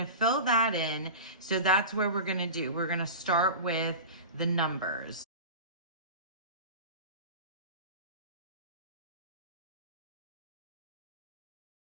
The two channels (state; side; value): inverted; both; correlation -0.30